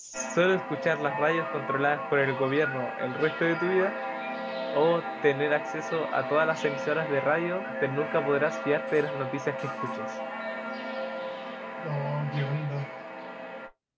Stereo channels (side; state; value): both; identical; correlation 1.00